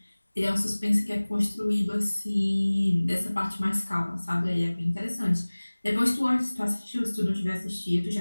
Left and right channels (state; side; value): inverted; both; correlation -1.00